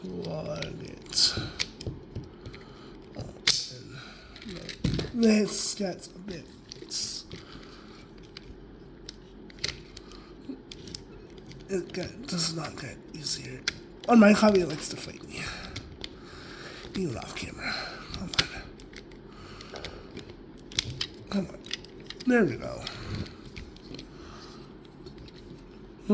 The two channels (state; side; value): identical; both; correlation 1.00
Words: plug it in. This gets a bit. It does not get easier. On my hobby, it likes to fight me. Even off camera. Come on. There we go.